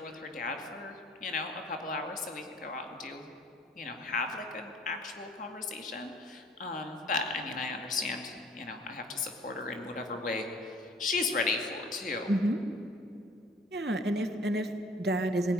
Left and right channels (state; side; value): normal; both; correlation 0.53